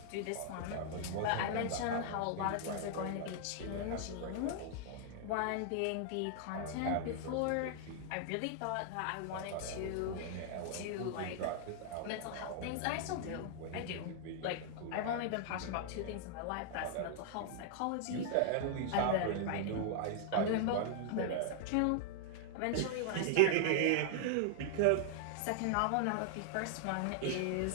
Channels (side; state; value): both; different; correlation -0.01